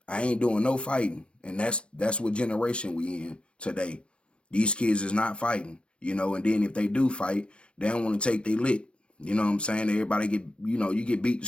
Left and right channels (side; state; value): right; late; 0.059 ms